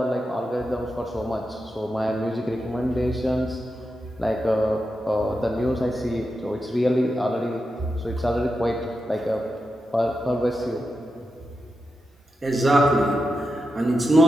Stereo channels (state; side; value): normal; both; correlation 0.88